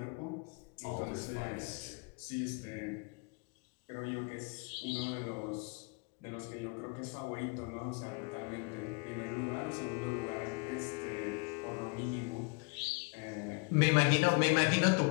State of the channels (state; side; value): quieter; right; 32.5 dB